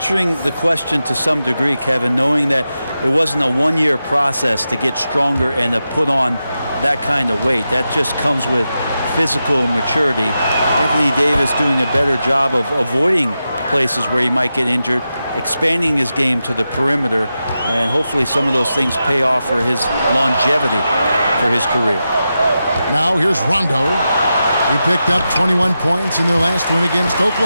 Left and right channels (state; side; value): inverted; both; correlation -0.90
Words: the question to some degree, Kevin, knowing that it wasn't a one-year process to get stronger and to put on that kind of weight. That just comes with physical maturity. Anthony Davis doing a better job of avoiding places where he might get injured, expanding his game to the perimeter, and hopefully some of those things pay off for his longevity for his career. Now here's Rondo. He picked up 21 points in their last win against